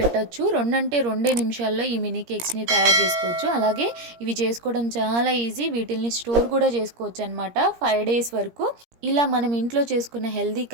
2 నిమిషాల్లో ఈ మినీ కేక్స్ని తయారు చేసుకోవచ్చు. అలాగే ఇవి చేసుకోవడం చాలా ఈజీ. వీటిల్ని స్టోర్ కూడా చేసుకోవచ్చు అనమాట 5 days వరకు. ఇలా మనం ఇంట్లో చేసుకున్న హెల్దీ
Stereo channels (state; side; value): late; left; 17 ms